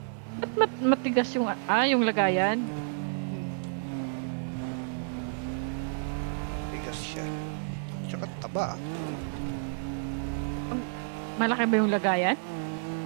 Ba't matigas yung, yung lagayan? Matigas siya. Tsaka taba. Malaki ba yung lagayan?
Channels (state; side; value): silent; left; digital silence